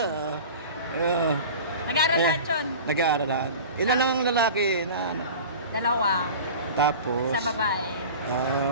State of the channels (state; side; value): inverted; both; correlation -0.36